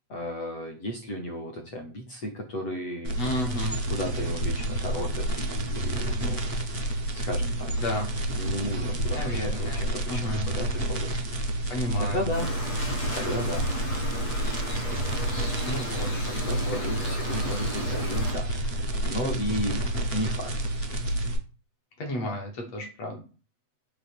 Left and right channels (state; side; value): late; right; 8.0 ms